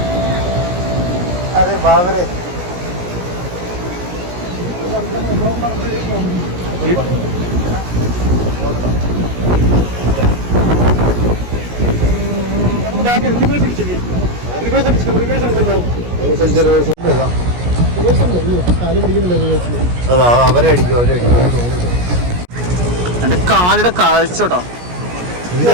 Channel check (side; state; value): left; late; 17 ms